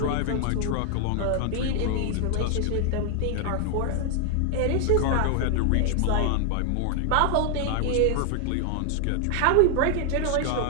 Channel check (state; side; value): different; both; correlation 0.00